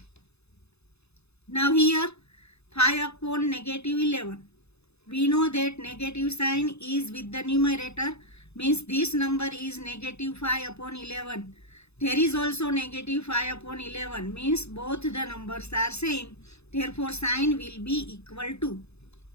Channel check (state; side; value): late; right; 0.79 ms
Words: Now here 5 upon negative 11. We know that negative sign is with the numerator means this number is negative 5 upon 11. There is also negative 5 upon 11 means both the numbers are same. Therefore sign will be equal to.